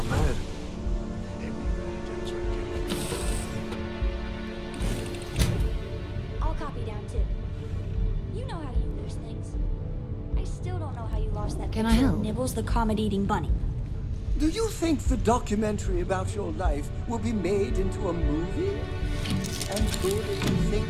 mad. I'll copy down too. You know how you lose things. I still don't know how you lost that Can I picture of help? Nibbles the comet-eating bunny. Do you think the documentary about your life will be made into a movie? And who do you think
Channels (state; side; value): identical; both; correlation 1.00